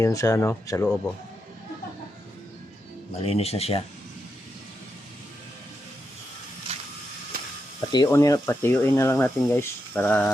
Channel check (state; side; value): normal; both; correlation 0.85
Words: yun sa ano, sa loob oh. Malinis na siya. Patiyuin na lang natin guys